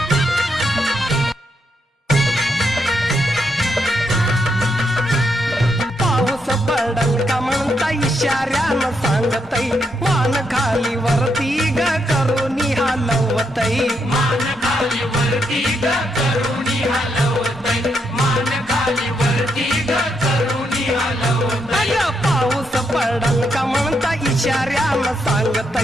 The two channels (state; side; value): normal; both; correlation 0.79